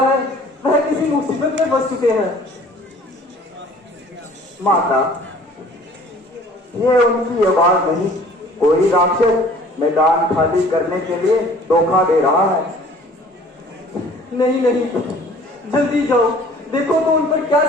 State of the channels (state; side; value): normal; both; correlation 0.51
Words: वह किसी मुसीबत में फंस चुके हैं। माता, ये उनकी आवाज नहीं, कोई राक्षस मैदान खाली करने के लिए धोखा दे रहा है। नहीं नहीं, जल्दी जाओ, देखो तो उन पर क्या